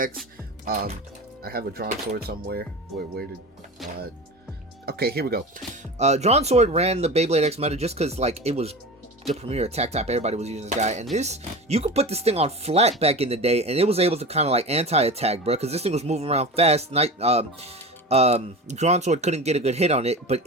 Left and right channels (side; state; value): both; normal; correlation 0.30